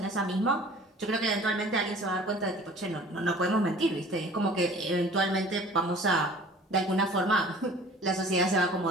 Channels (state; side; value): normal; both; correlation 0.47